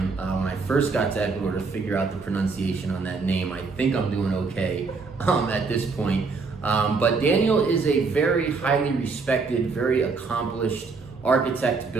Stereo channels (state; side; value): quieter; left; 4.4 dB